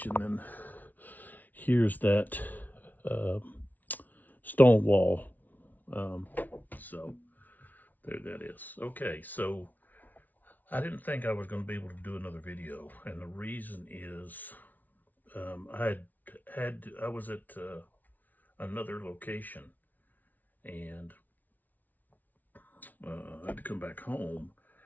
and then here's that stone wall. So there that is. Okay, so I didn't think I was going to be able to do another video, and the reason is I was at another location, and I had to come back home,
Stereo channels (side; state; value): right; late; 0.079 ms